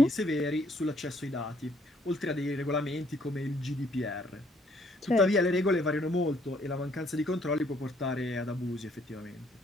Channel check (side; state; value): both; normal; correlation 0.66